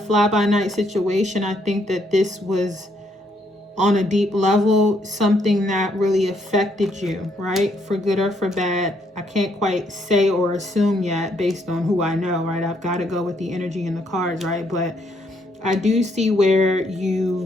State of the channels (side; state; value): both; normal; correlation 0.72